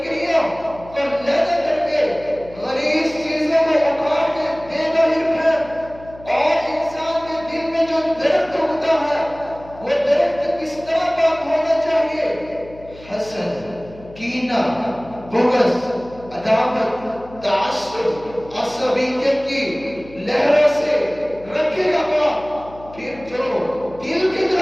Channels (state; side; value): noise; left; hum, 20 dB below the sound